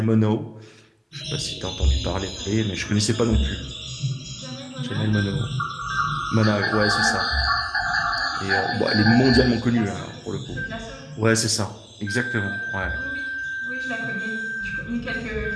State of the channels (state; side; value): identical; both; correlation 1.00